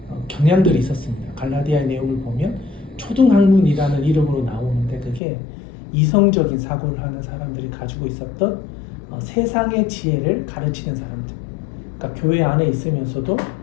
경향들이 있었습니다. 갈라디아의 내용을 보면 초등학문이라는 이름으로 나오는데, 그게 이성적인 사고를 하는 사람들이 가지고 있었던 세상의 지혜를 가르치는 사람들. 그러니까 교회 안에 있으면서도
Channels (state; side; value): drops out; right; at 5.2 s